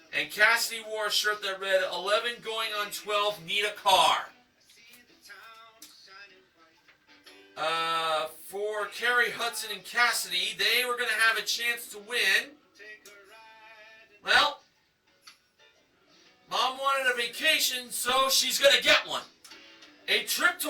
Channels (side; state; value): both; identical; correlation 1.00